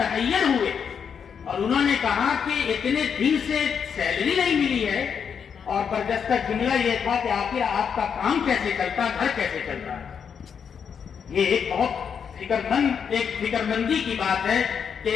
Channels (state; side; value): quieter; right; 7.1 dB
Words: ہوئے اور انہوں نے کہا کہ اتنے دن سے سیلری نہیں ملی ہے، اور برجستہ جملہ یہ تھا کہ آخر آپ کا کام کیسے چلتا، گھر کیسے چلتا ہے۔ یہ ایک بہت ایک فکرمندی کی بات ہے کہ